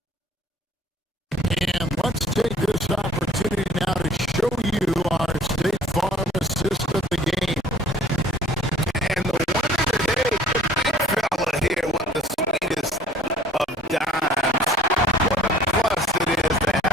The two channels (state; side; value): normal; both; correlation 0.53